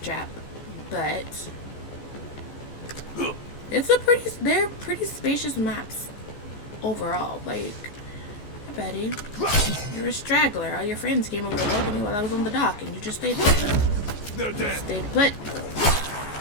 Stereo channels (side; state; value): right; late; 14 ms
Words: trap. But they're pretty spacious maps overall. Like, hey buddy, you're a straggler. All your friends came over to welcome you while I was on the dock, and you just stayed there. They're dead. Stayed put.